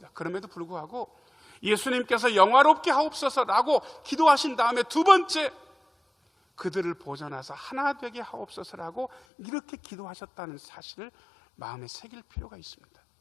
그럼에도 불구하고 예수님께서 영화롭게 하옵소서라고 기도하신 다음에 두 번째, 그들을 보전하사 하나 되게 하옵소서라고 이렇게 기도하셨다는 사실을 마음에 새길 필요가 있습니다.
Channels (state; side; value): drops out; right; at 9.2 s